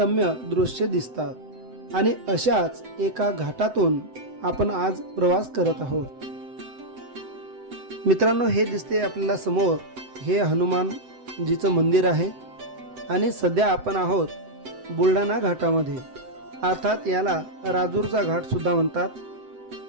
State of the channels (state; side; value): late; left; 7.9 ms